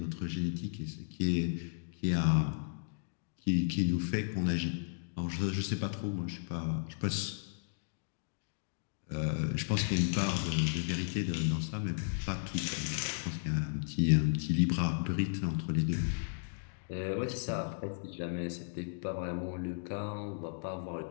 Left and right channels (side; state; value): right; silent; digital silence